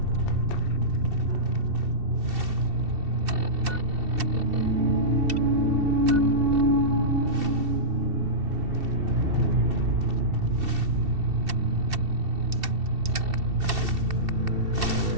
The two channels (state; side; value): late; left; 2.7 ms